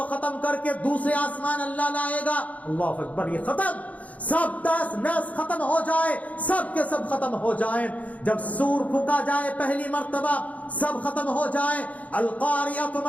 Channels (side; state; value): right; late; 0.070 ms